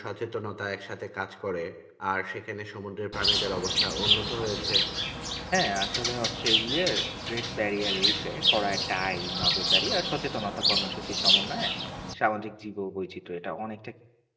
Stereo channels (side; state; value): both; identical; correlation 1.00